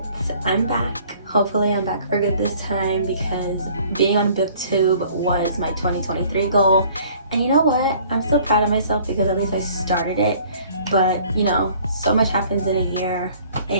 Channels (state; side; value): inverted; both; correlation -0.55